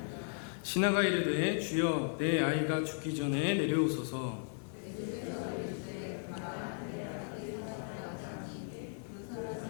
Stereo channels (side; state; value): right; silent; digital silence